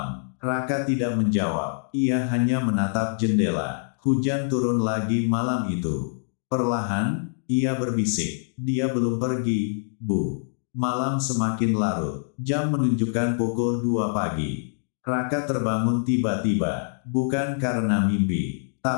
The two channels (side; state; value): right; silent; digital silence